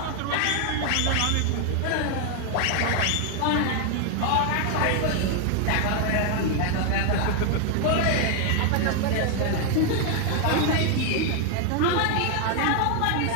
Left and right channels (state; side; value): different; both; correlation 0.00